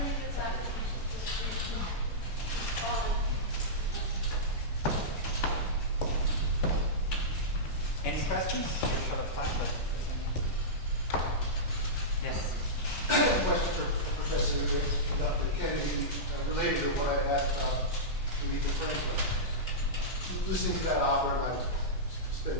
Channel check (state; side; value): normal; both; correlation -0.13